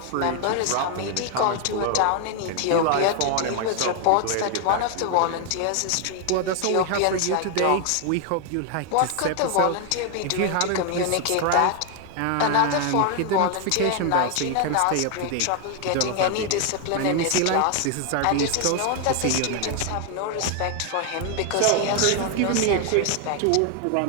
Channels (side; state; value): both; different; correlation 0.00